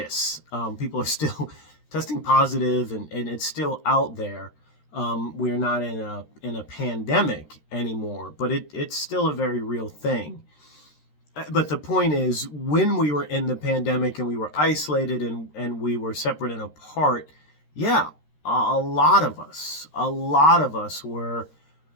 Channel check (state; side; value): late; right; 13 ms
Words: People are still testing positive, and it's still out there. We're not in a pandemic anymore, but it's still a very real thing. But the point is, when we were in the pandemic and we were isolated and we were separate and apart, yeah, a lot of us were